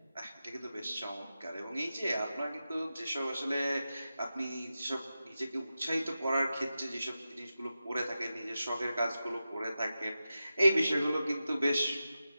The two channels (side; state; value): both; inverted; correlation -0.92